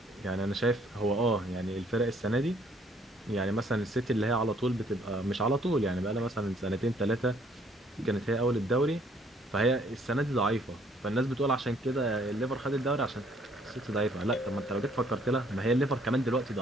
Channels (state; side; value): normal; both; correlation 0.63